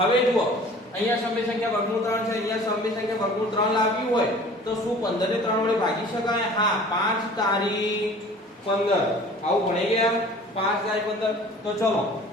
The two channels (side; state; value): both; normal; correlation 0.46